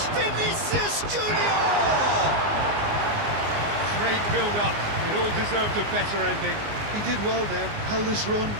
Junior! Great build-up. It all deserved a better ending. He did well there, held his run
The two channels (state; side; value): late; left; 19 ms